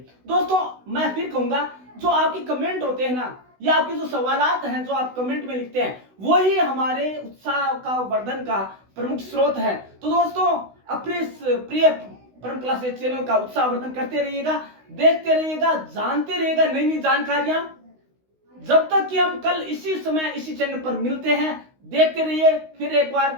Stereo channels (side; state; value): left; late; 16 ms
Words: दोस्तों मैं फिर कहूंगा, जो आपके कमेंट होते हैं ना, या आपके जो सवालात हैं जो आप कमेंट में लिखते हैं, वही हमारे उत्साह का वर्धन का प्रमुख स्रोत है। तो दोस्तों अपने इस प्रिय परम क्लासेज चैनल का उत्साह वर्धन करते रहिएगा, देखते रहिएगा, जानते रहिएगा नई नई जानकारियां। जब तक कि हम कल इसी समय इसी चैनल पर मिलते हैं, देखते रहिए फिर एक बार